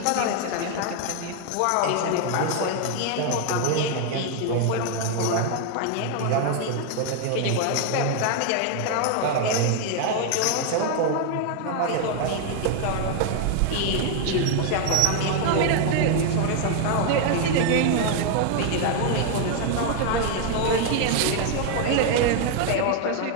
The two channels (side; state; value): both; different; correlation 0.00